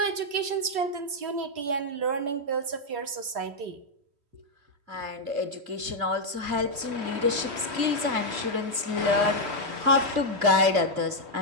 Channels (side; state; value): left; late; 2.6 ms